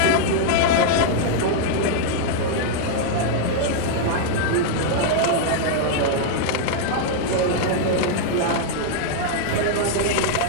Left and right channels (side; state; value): both; different; correlation -0.01